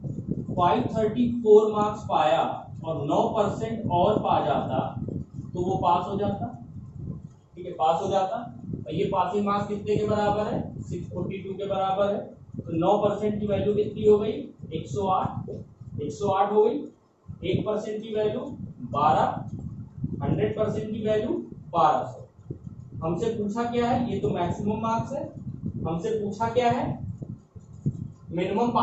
534 मार्क्स पाया और 9% और पा जाता तो वो पास हो जाता, ठीक है, पास हो जाता। और ये पासिंग मार्क्स कितने के बराबर है, 642 के बराबर है, तो 9% की वैल्यू कितनी हो गई, 108, 108 हो गई। 1% की वैल्यू 12, 100% की वैल्यू 1200। हमसे पूछा क्या है, ये तो मैक्सिमम मार्क्स है, हमसे पूछा क्या है, minimum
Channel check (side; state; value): both; identical; correlation 1.00